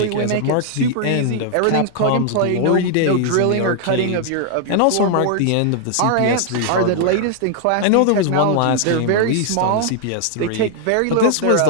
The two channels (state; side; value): different; both; correlation 0.00